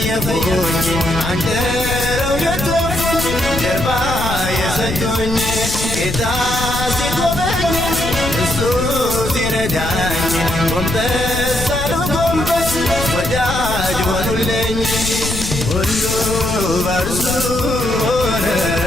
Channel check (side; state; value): left; noise; rumble, 5 dB below the sound